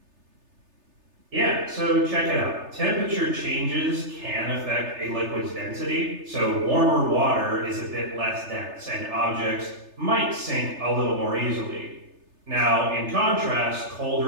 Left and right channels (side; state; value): left; late; 3.3 ms